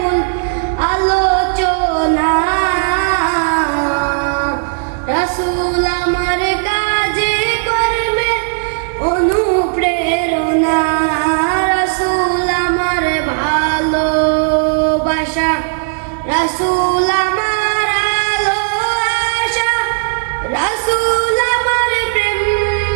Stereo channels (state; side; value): silent; left; digital silence